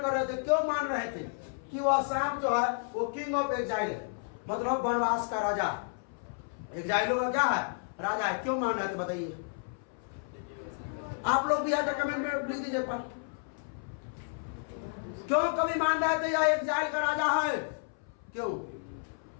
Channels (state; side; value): silent; right; 57 dB below the other